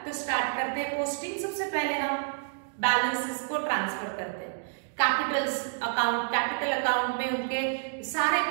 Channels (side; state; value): left; silent; digital silence